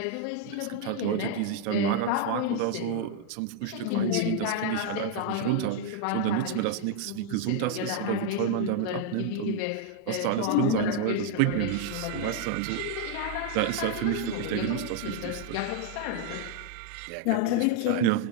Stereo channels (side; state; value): both; different; correlation 0.00